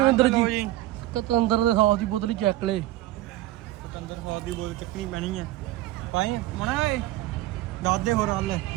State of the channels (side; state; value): left; quieter; 15.6 dB